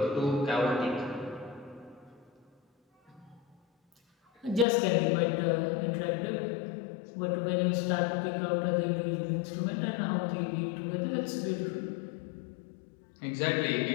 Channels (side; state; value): right; drops out; at 4.7 s